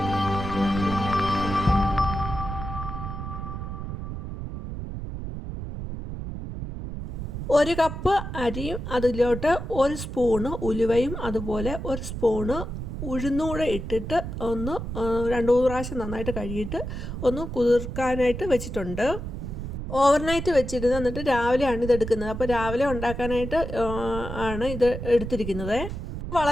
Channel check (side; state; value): right; noise; rumble, 6 dB below the sound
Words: ഒരു കപ്പ് അരിയും അതിലോട്ട് ഒരു സ്പൂണ് ഉലുവയും അതുപോലെ ഒരു സ്പൂണ് ഉഴുന്നൂടെ ഇട്ടിട്ട് ഒന്ന് 2-3 പ്രാവശ്യം നന്നായിട്ട് കഴുകിയിട്ട് ഒന്ന് കുതിർക്കാനായിട്ട് വെച്ചിട്ടുണ്ട്. ഓവർനൈറ്റ് വെച്ചിരുന്ന് എന്നിട്ട് രാവിലെയാണ് ഇത് എടുക്കുന്നത്. അപ്പോൾ രാവിലെ ഉണ്ടാക്കാനായിട്ട് ആണ് ഇത് എടുത്തിരിക്കുന്നത്.